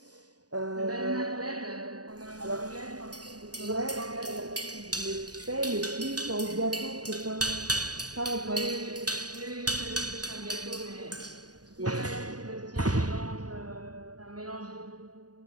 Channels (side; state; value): left; late; 0.68 ms